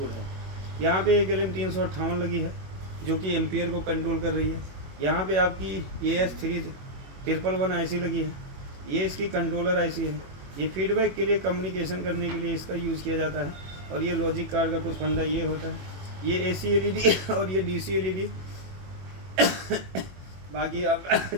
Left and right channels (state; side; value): late; left; 21 ms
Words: है। यहाँ पे एक LM358 लगी है जो कि एम्पियर को कंट्रोल कर रही है। यहाँ पे आपकी AS311 आईसी लगी है। ये इसकी कंट्रोलर आईसी है। ये फीडबैक के लिए, कम्युनिकेशन करने के लिए इसका यूज़ किया जाता है। और ये लॉजिक कार्ड का कुछ फंडा ये होता है। ये AC LED और ये DC LED बाकी आपका